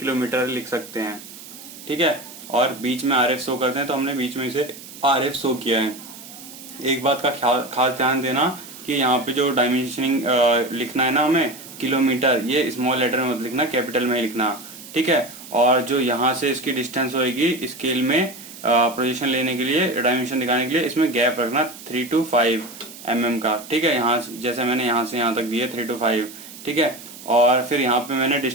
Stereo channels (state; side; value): noise; right; hiss, 16 dB below the sound